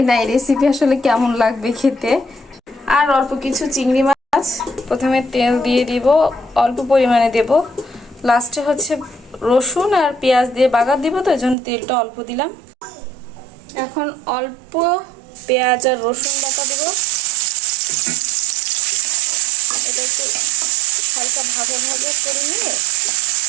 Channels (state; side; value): drops out; left; at 11.6 s